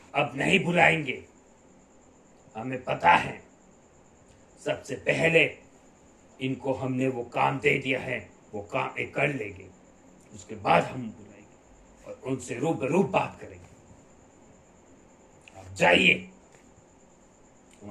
अब नहीं बुलाएंगे। हमें पता है सबसे पहले इनको हमने वो काम दे दिया है, वो काम एक कर लेंगे, उसके बाद हम बुलाएंगे और उनसे रूबरू बात करेंगे। आप जाइए,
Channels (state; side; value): identical; both; correlation 1.00